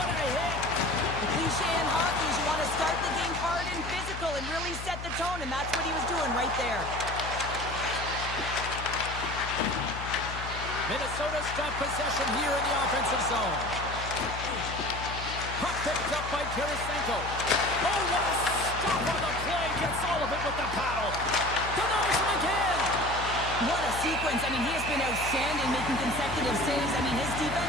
a hit. The cliche in hockey is you want to start the game hard and physical and really set the tone, and that's what he was doing right there. Minnesota's got possession here in the offensive zone. Puck picked up by Tarasenko. Oh, what a stop on the play. Gets all of it with the paddle. Denies him again. What a sequence. I mean, he has been outstanding making consecutive saves. I mean, his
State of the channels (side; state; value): left; noise; hum, 9 dB below the sound